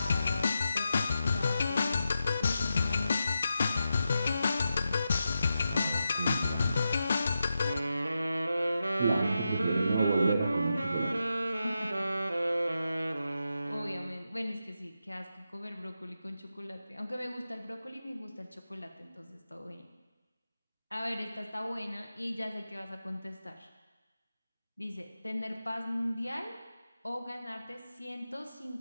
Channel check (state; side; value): inverted; both; correlation -0.88